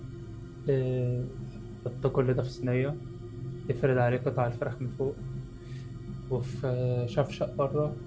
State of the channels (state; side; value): identical; both; correlation 1.00